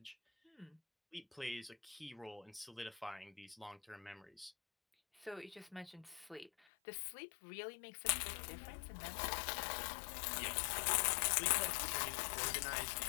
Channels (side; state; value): right; drops out; at 6.5 s